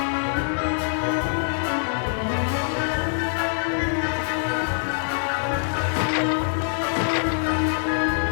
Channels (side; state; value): right; silent; 63 dB below the other